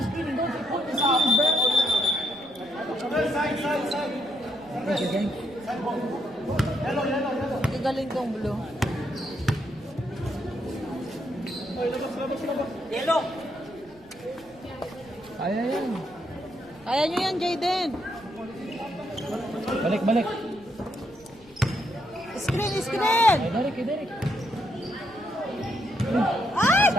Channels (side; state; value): right; noise; rumble, 27 dB below the sound